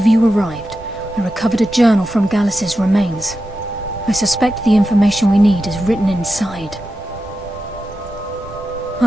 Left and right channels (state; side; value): normal; both; correlation 0.90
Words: you arrived, I recovered a journal from Gallus's remains. I suspect the information we need is written inside.